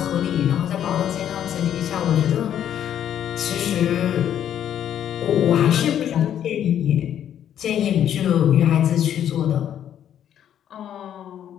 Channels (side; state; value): right; quieter; 10.1 dB